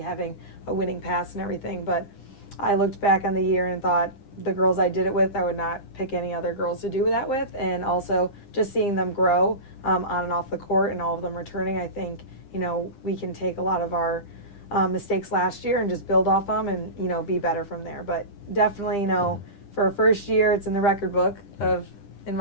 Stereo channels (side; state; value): right; late; 9.9 ms